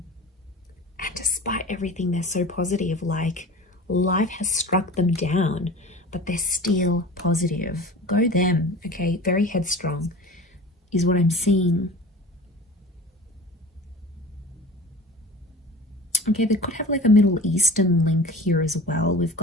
And despite everything, they're so positive. Like, life has struck them down, but they're still positive. Go them, okay? Very headstrong is what I'm seeing. Okay, they could have like a Middle Eastern link here as well. We've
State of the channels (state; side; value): normal; both; correlation 0.38